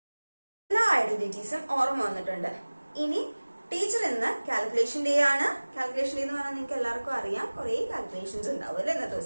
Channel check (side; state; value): both; inverted; correlation -1.00